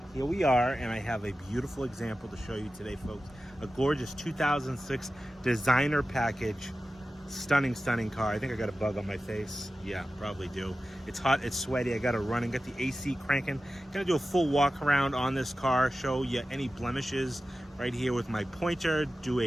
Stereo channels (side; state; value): both; normal; correlation 0.94